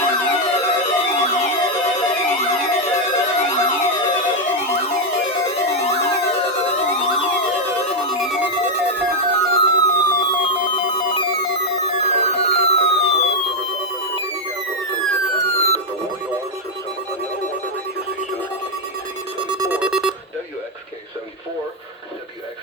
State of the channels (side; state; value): both; normal; correlation 0.02